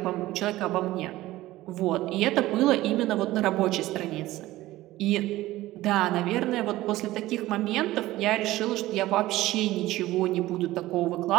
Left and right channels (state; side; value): quieter; left; 16.7 dB